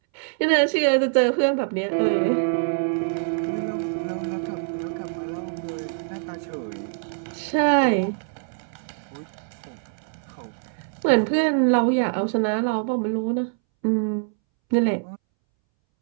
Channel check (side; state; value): left; silent; 62 dB below the other